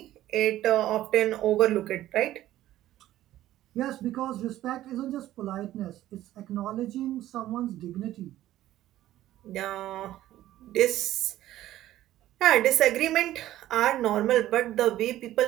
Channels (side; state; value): left; quieter; 14.0 dB